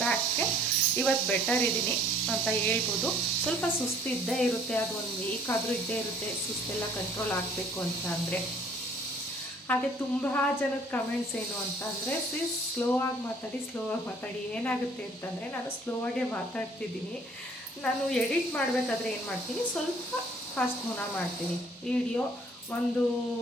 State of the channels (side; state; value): both; normal; correlation 0.57